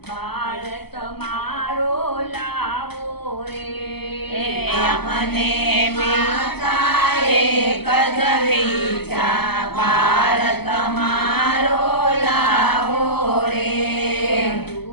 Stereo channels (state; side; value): late; right; 0.97 ms